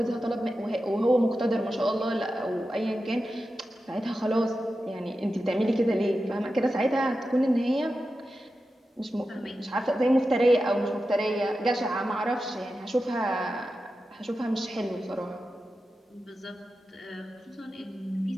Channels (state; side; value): normal; both; correlation 0.91